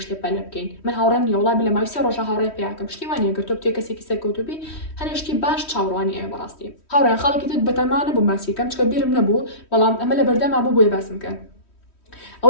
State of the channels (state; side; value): late; right; 3.1 ms